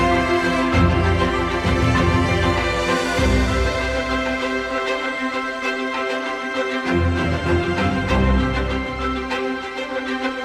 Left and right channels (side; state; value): both; identical; correlation 1.00